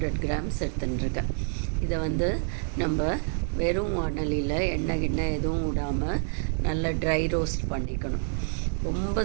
கிராம்ஸ் எடுத்துட்டுருக்கேன். இதை நம்ம வெறும் வாணலியில் எண்ணெய் எதுவும் விடாமல் நல்லா ட்ரை ரோஸ்ட் பண்ணிக்கணும். ரொம்ப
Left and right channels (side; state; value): left; silent; 60 dB below the other